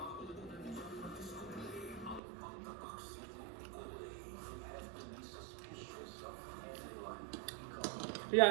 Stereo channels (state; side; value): drops out; left; at 2.2 s